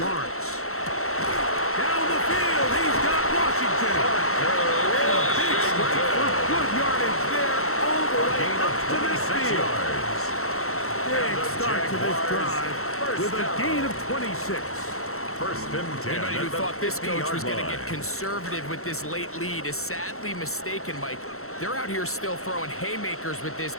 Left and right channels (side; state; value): right; late; 0.63 ms